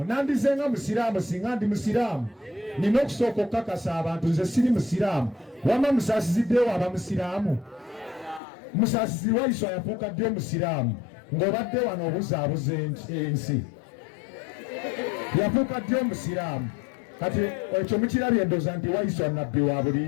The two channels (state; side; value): drops out; right; at 8.4 s